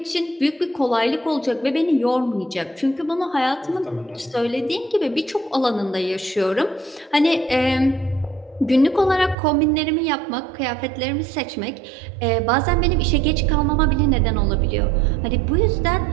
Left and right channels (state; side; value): drops out; left; at 9.3 s